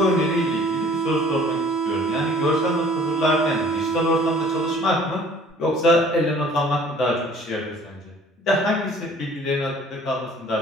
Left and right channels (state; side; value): normal; both; correlation 0.52